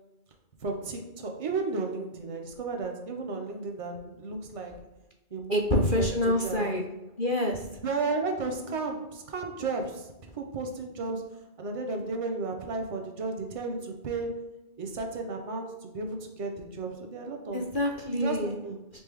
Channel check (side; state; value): right; late; 2.4 ms